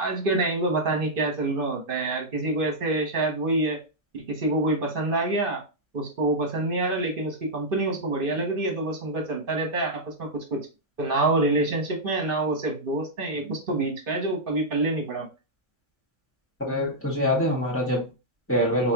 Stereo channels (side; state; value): both; normal; correlation -0.07